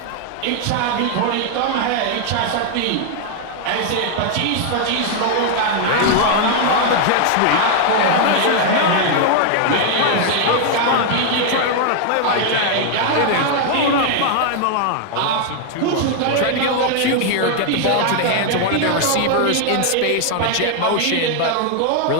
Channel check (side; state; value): both; different; correlation 0.00